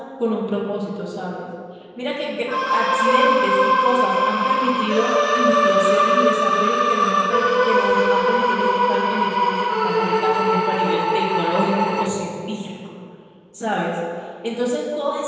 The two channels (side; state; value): both; identical; correlation 1.00